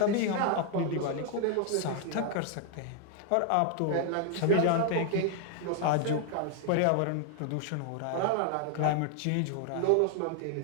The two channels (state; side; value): different; both; correlation 0.00